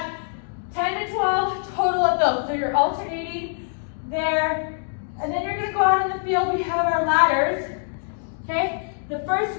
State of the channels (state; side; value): silent; right; 62 dB below the other